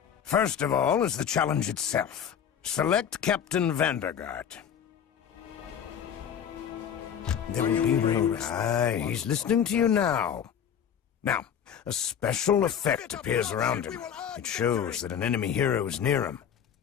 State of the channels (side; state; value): right; quieter; 8.4 dB